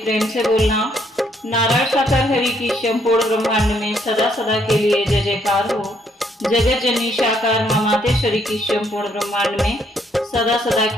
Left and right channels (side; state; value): both; normal; correlation 0.70